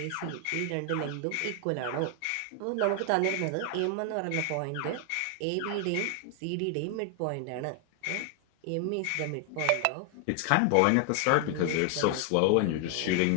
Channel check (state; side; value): different; both; correlation 0.00